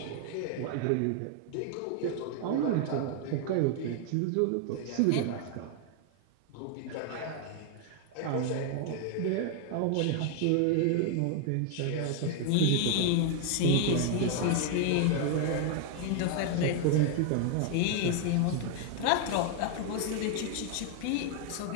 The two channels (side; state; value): both; different; correlation 0.00